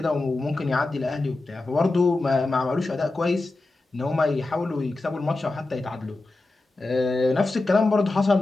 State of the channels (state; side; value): quieter; right; 3.1 dB